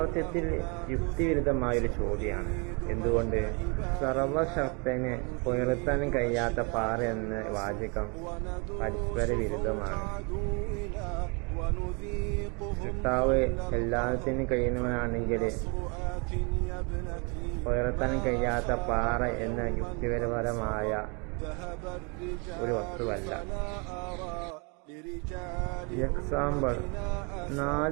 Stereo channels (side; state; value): left; quieter; 32.8 dB